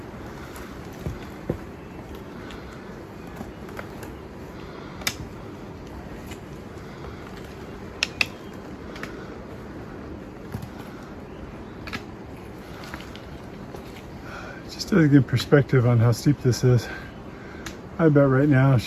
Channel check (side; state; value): both; identical; correlation 1.00